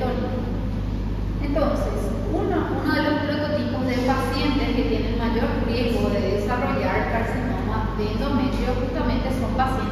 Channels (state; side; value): identical; both; correlation 1.00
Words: Entonces, uno de los prototipos de pacientes que tienen mayor riesgo de desarrollar carcinoma de endometrio justamente son